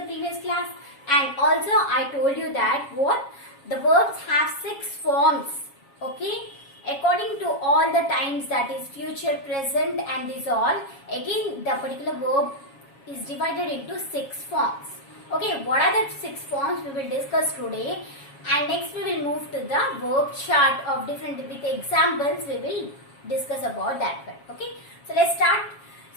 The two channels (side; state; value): right; late; 7.3 ms